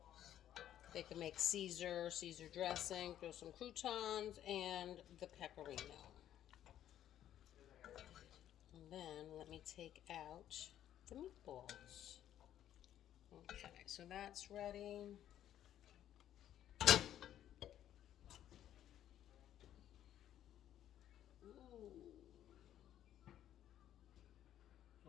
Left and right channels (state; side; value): quieter; right; 11.4 dB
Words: They can make Caesar dressing, throw some croutons, and the pecorino. And then let me take out the meatballs. Okay, so that's ready. Ooh.